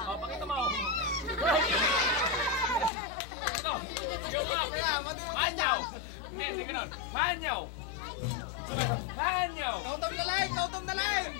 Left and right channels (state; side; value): drops out; right; at 2.9 s